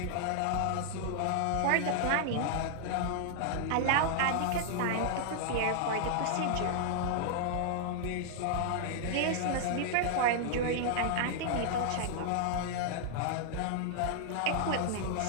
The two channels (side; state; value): both; different; correlation -0.01